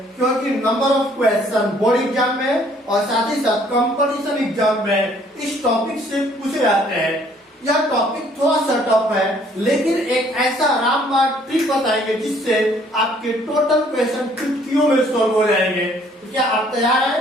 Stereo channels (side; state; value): both; normal; correlation 0.61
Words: क्योंकि number of question board exam में और साथ ही साथ कंपटीशन एग्जाम में इस टॉपिक से पूछे जाते हैं। यह टॉपिक थोड़ा सा टफ है, लेकिन एक ऐसा रामबाण ट्रिक बताएंगे जिससे आपके टोटल क्वेश्चन चुटकियों में सॉल्व हो जाएंगे। तो क्या आप तैयार